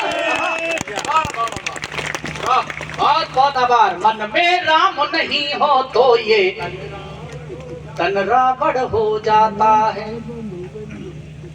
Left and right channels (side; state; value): both; identical; correlation 1.00